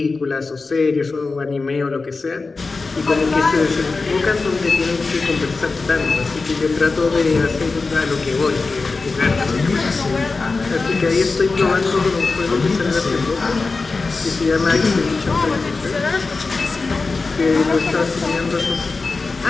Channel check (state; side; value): quieter; right; 4.0 dB